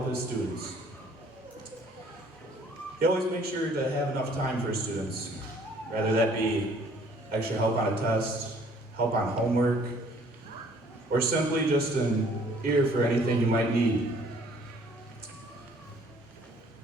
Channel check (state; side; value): normal; both; correlation 0.58